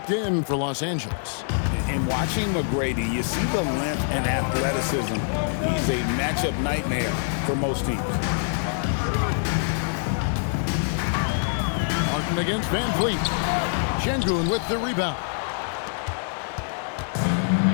in for Los Angeles. And watching McGrady, you see the length and athleticism. He's a matchup nightmare for most teams. Martin against Van Vliet. Şengün with the rebound.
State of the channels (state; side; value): silent; right; digital silence